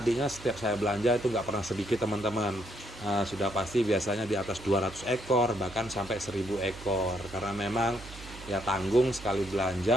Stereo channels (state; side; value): noise; right; hum, 16 dB below the sound